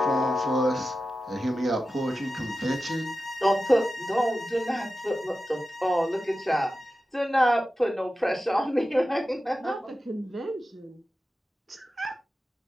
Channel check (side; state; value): both; normal; correlation 0.93